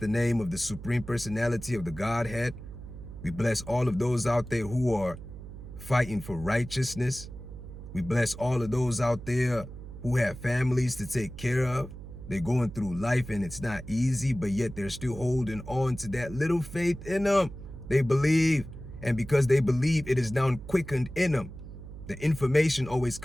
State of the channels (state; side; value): noise; right; hum, 13 dB below the sound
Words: name of the Supreme Personality of the Godhead. We bless all of those out there who are fighting for righteousness. We bless all of those out there who have families to take care of. They're going through life and it's not easy, but yet they're still holding on to that little faith in them. They believe, and because they believe, it is now quickened in them. The information always